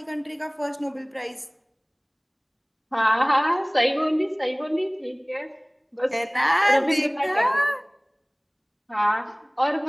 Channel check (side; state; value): both; identical; correlation 1.00